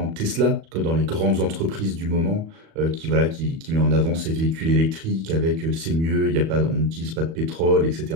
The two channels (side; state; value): left; late; 37 ms